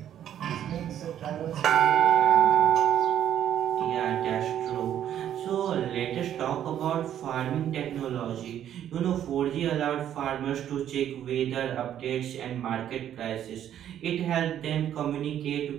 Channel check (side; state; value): left; quieter; 10.5 dB